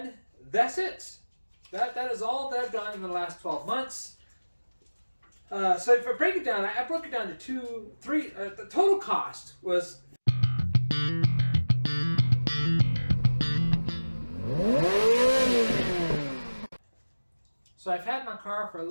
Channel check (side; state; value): both; inverted; correlation -1.00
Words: that's it. That is all that I've done in the last 12 months. So if I break it down, I broke it down to three. The total cost was so I've had my car for a